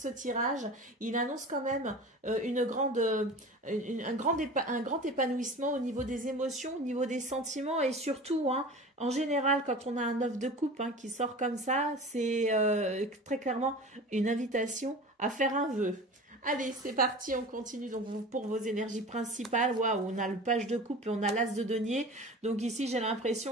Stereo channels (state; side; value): normal; both; correlation 0.36